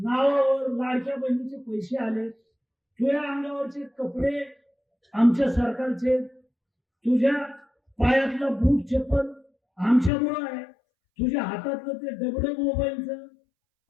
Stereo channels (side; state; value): right; drops out; at 10.1 s